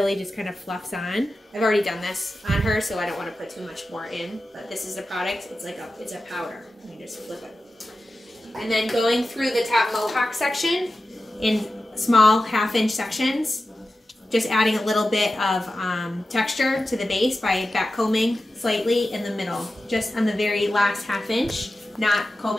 just kind of fluffs on. I've already done this on her, so I don't want to put too much more in. But this is the product. It's like it's a powder. You just flip it. And then going through the top mohawk section in small half-inch sections, just adding a little bit of texture to the base by backcombing slightly in the middle, just on the very last half-inch, not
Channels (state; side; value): normal; both; correlation 0.93